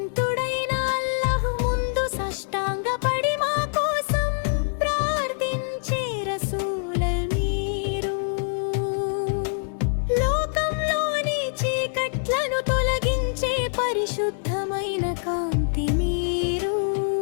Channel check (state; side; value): silent; right; digital silence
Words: అల్లాహ్ ముందు సాష్టాంగపడి మా కోసం ప్రార్థించే రసూల మీరు. లోకంలోని చీకట్లను తొలగించే పరిశుద్ధమైన కాంతి మీరు.